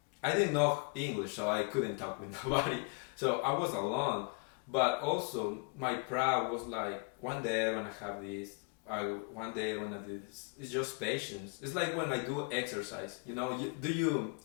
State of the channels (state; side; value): quieter; right; 36.7 dB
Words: I didn't know English, so I couldn't talk with nobody. So I was alone. But also, my pride was like, one day I'm gonna have this. One day I'm gonna do this. It's just patience. It's like when I do exercise. You know, do you